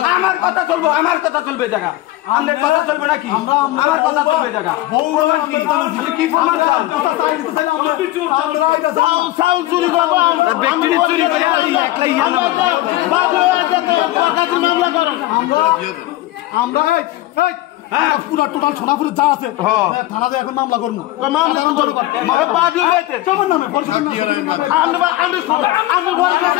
আমার কথা চলবো, আমার কথা চলবে জায়গা, আমাদের কথা চলবে নাকি? আমার কথা চলবে জায়গা। কি প্রমাণ চান? পুরা টোটাল সোনাপুরে যা আছে থানাতে এখন মামলা করবো।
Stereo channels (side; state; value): right; quieter; 16.6 dB